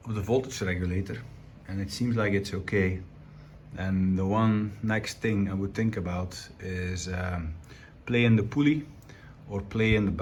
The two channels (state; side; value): identical; both; correlation 1.00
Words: voltage regulator, and it seems like it's okay, and the one next thing I would think about is play in the pulley or play in the